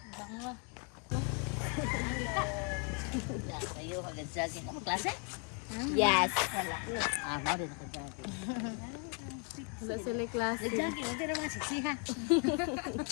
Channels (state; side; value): quieter; right; 36.4 dB